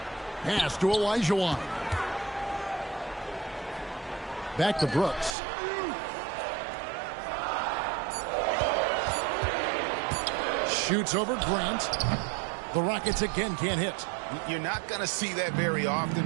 Pass to Olajuwon. Back to Brooks. Shoots over Grant. The Rockets again can't hit. You're not going to see that very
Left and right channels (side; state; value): left; drops out; at 5.4 s